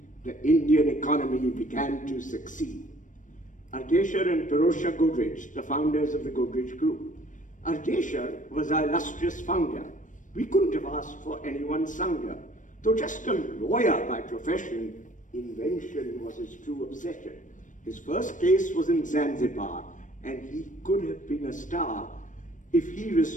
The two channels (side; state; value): right; late; 0.37 ms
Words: The Indian economy began to succeed. Ardeshir and Pirosha Godrej, the founders of the Godrej Group. Ardeshir was our illustrious founder. We couldn't have asked for anyone sounder. Though just a lawyer by profession, invention was his true obsession. His first case was in Zanzibar, and he could have been a star if he